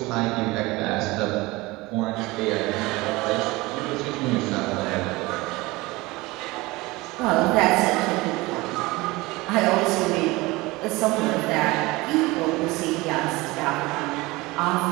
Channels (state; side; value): quieter; left; 21.8 dB